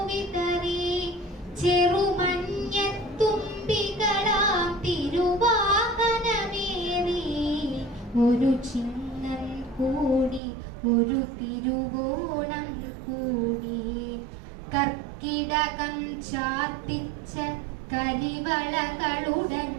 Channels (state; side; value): drops out; left; at 10.4 s